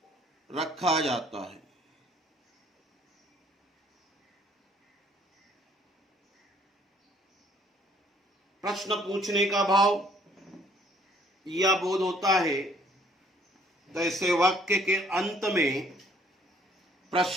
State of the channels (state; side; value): normal; both; correlation 0.61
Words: रखा जाता है। प्रश्न पूछने का भाव या बोध होता है तो ऐसे वाक्य के अंत में